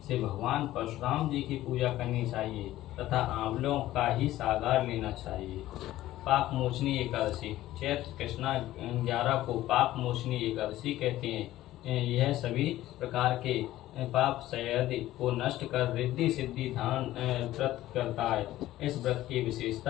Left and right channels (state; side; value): quieter; right; 15.0 dB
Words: से भगवान परशुराम जी की पूजा करनी चाहिए तथा आंवलों का ही सागार लेना चाहिए। पाप मोचनी एकादशी। चैत्र कृष्णा 11 को पाप मोचनी एकादशी कहते हैं। यह सभी प्रकार के पाप संयति को नष्ट कर रिद्धि सिद्धि धान व्रत करता है। इस व्रत की